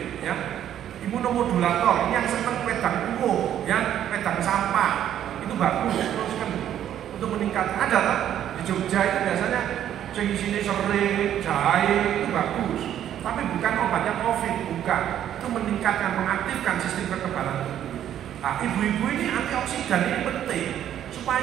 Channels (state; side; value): quieter; left; 10.7 dB